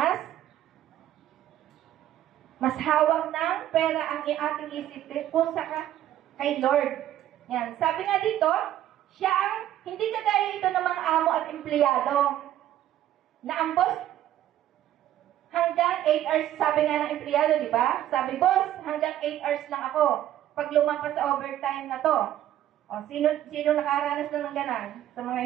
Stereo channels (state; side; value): quieter; left; 12.4 dB